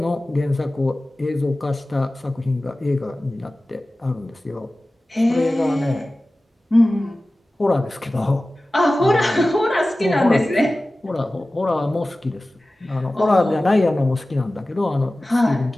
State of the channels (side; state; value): both; normal; correlation 0.96